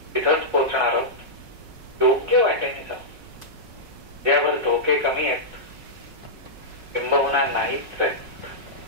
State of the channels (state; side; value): late; left; 5.4 ms